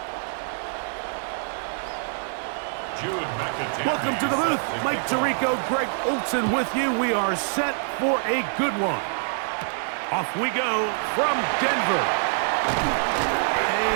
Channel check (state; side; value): silent; left; digital silence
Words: Welcome to the booth. Mike Tirico, Greg Olson with you. We are set for a good one. Off we go from Denver.